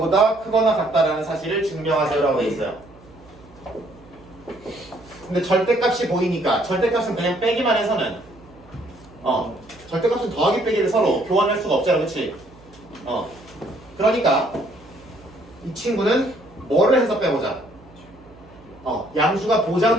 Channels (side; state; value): right; noise; hum, 24 dB below the sound